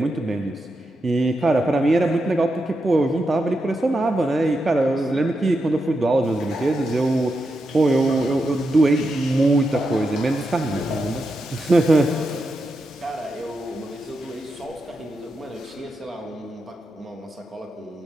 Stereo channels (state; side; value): normal; both; correlation 0.86